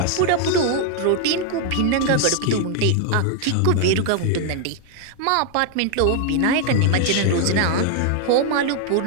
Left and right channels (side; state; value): both; different; correlation 0.00